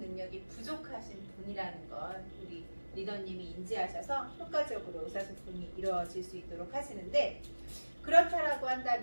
부족하신 분이라는 건 우리 리더님이 인지하셔서 효과적으로 의사소통이 이루어질 수 있도록 하시는데, 그렇다라고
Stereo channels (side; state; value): both; inverted; correlation -1.00